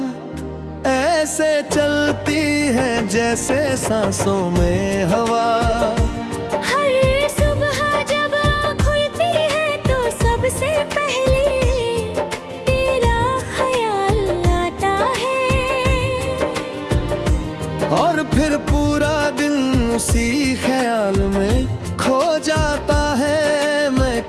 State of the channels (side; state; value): both; identical; correlation 1.00